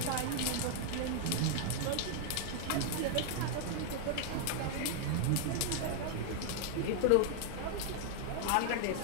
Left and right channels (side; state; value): both; different; correlation 0.00